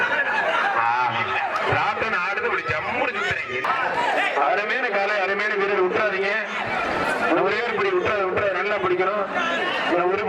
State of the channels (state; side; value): identical; both; correlation 1.00